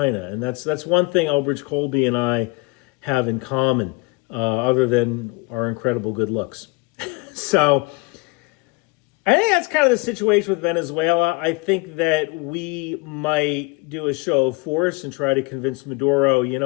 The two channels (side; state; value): right; quieter; 25.9 dB